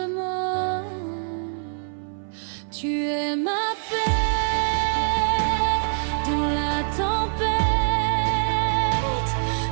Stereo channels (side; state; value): left; silent; 57 dB below the other